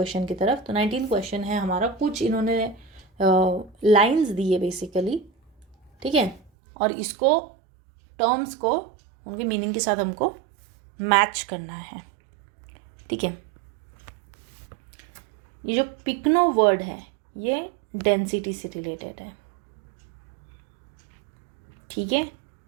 की तरफ। तो 19th क्वेश्चन है हमारा, कुछ इन्होंने लाइंस दी है बेसिकली, ठीक है। और इसको टर्म्स को उनके मीनिंग के साथ हमको मैच करना है, ठीक है। ये जो पिकनो वर्ड है ये डेंसिटी से रिलेटेड है, ठीक है।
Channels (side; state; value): left; drops out; at 6.5 s